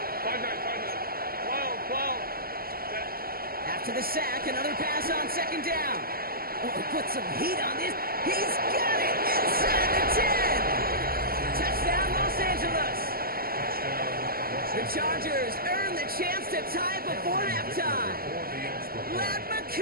5-9. 12. After the sack, another pass on 2nd down. Oh, put some heat on this. He's got it inside the 10. Touchdown, Los Angeles. The Chargers earn the chance to tie it before halftime. Let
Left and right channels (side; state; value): left; late; 0.43 ms